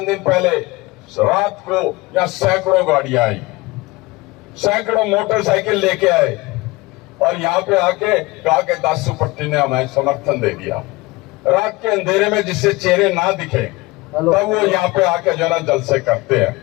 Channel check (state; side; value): quieter; right; 22.0 dB